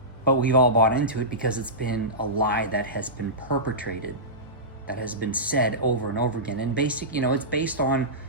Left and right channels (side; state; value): both; normal; correlation -0.18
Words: But we've all bought into it because it's been a lie that has been perpetrated, that has been said over and over again. And it's based on